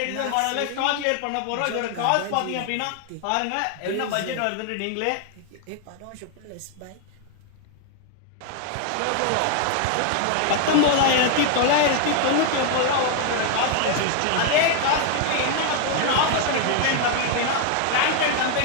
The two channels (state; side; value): different; both; correlation 0.00